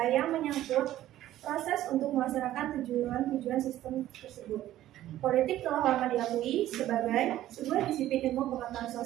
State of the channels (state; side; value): quieter; left; 13.6 dB